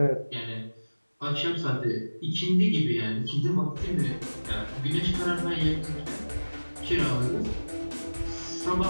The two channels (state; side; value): inverted; both; correlation -1.00